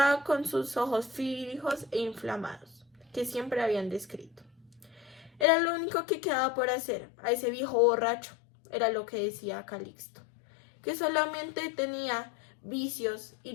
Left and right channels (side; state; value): right; drops out; at 5.5 s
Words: con sus ojos fijos e inflamados, que siempre habían descrito. Era lo único que quedaba por hacer a ese viejo borracho, era lo que decía Calixto, que solamente tenía vicios y